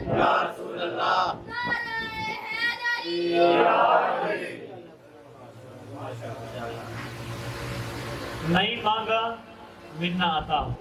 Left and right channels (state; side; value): identical; both; correlation 1.00